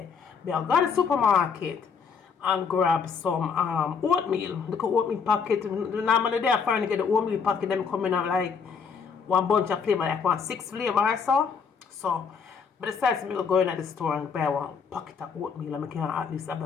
I go to the supermarket and grab some oatmeal. Look at oatmeal packet. Normally they are trying to get the oatmeal packet. Them coming out like one bunch of flavor, like 6 flavor or so. So I decided to go in at the store and buy one packet of oatmeal. And I can at least have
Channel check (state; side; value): quieter; right; 6.0 dB